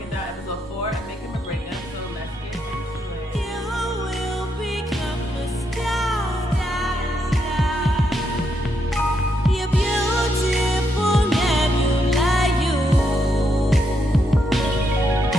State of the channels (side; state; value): both; normal; correlation 0.79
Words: down episode 4 and Makeup Breakup. So let's get into it. You will become a star. You're beautiful.